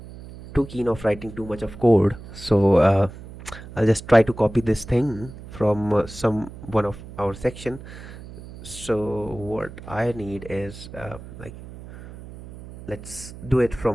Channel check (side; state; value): right; noise; hum, 15 dB below the sound